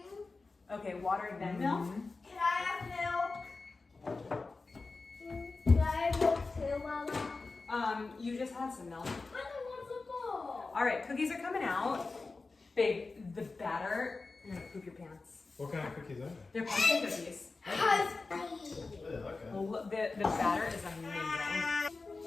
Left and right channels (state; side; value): quieter; right; 3.8 dB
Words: Okay, water then milk? Can I have milk? Can I have milk too, Mama? You just had some milk. I don't want some more. All right, cookies are coming out. Babe, the batter, you're gonna poop your pants. What kind of cookies are they? They're pumpkin cookies. Okay. Well, the batter is amazing.